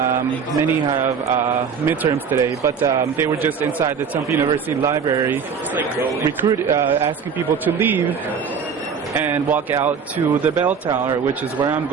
Many have midterms today, but they were just inside the Temple University library asking people to leave and walk out to the bell tower, which is where I'm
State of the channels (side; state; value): left; quieter; 6.3 dB